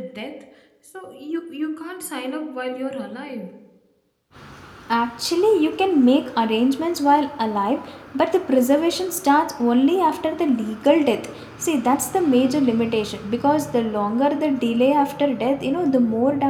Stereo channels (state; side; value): identical; both; correlation 1.00